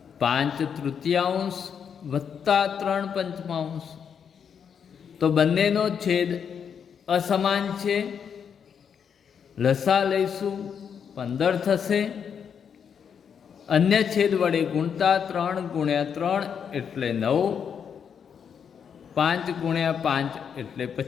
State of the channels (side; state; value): right; quieter; 7.4 dB